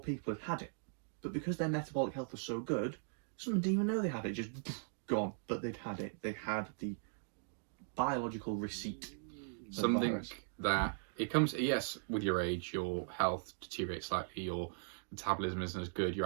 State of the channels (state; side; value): silent; left; digital silence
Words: people had it. But because their metabolic health was so good, some didn't even know they had it, just gone. But they'd had it. They had the biological receipt. Something that it comes, yes, with your age, your health deteriorates slightly, your metabolism isn't as good, your